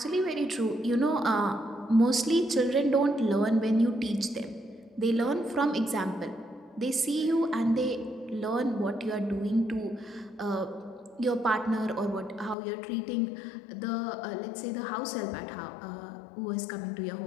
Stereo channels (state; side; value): drops out; right; at 12.6 s